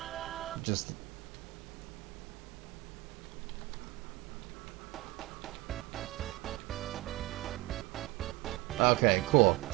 Just... Okay, cool.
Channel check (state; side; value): quieter; left; 20.2 dB